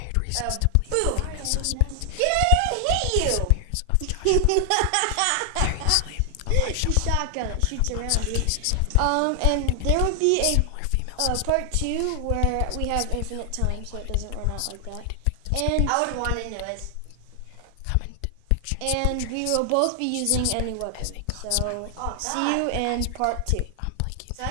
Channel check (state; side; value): different; both; correlation 0.00